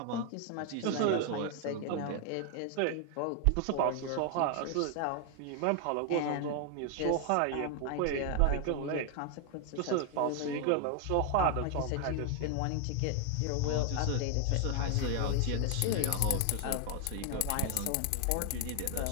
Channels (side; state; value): both; different; correlation 0.00